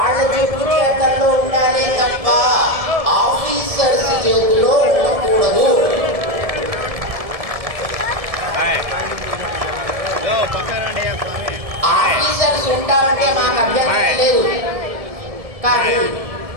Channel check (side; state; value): left; late; 1.7 ms